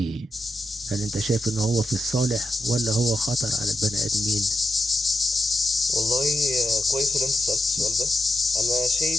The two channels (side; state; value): both; normal; correlation 0.88